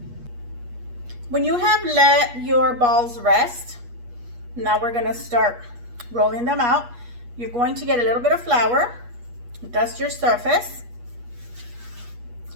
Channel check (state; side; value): late; left; 8.3 ms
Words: When you have let your balls rest, now we're gonna start rolling them out. You're going to get a little bit of flour, dust your surface,